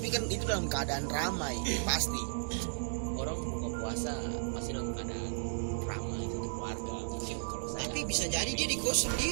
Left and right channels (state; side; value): silent; left; digital silence